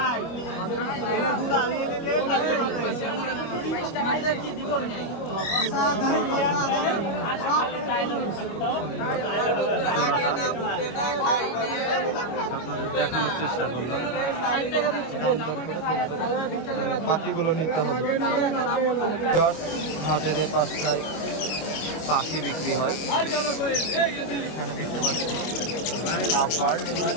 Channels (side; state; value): right; late; 25 ms